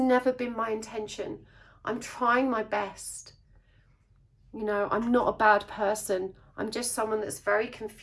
been my intention. I'm trying my best. You know, I'm not a bad person. I'm just someone that's very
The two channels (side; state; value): both; identical; correlation 1.00